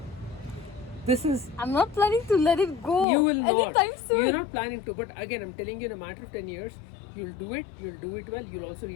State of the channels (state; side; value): drops out; right; at 3.1 s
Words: This is, I'm not planning to let it go. you will not. Anytime soon. You're not planning to. But again, I'm telling you, in a matter of 10 years, you'll do it well. You'll also